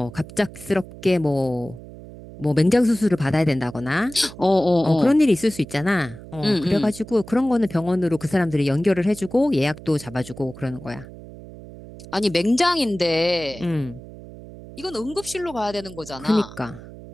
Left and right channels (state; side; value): noise; right; hum, 16 dB below the sound